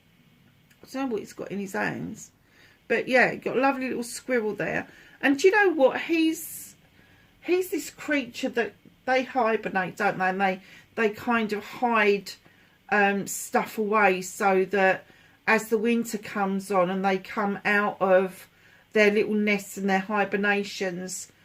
I don't know what he's got in his hands, but yeah, got a lovely little squirrel there. And do you know what, he's this creature that they hibernate, don't they? And they kind of hide stuff away so that as the winter comes on and they come out of their little nests and their hibernations,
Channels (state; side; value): identical; both; correlation 1.00